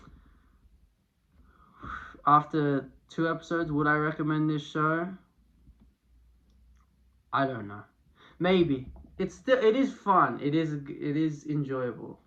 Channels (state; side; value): identical; both; correlation 1.00